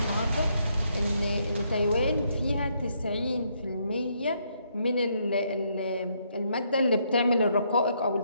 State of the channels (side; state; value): both; inverted; correlation -0.74